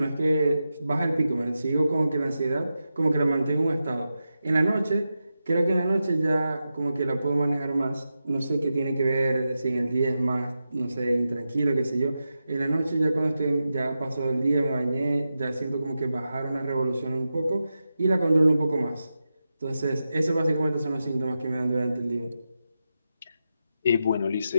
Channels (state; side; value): inverted; both; correlation -0.90